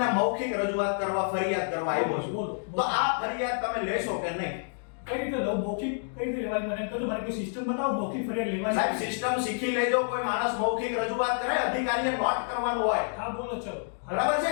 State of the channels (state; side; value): silent; right; digital silence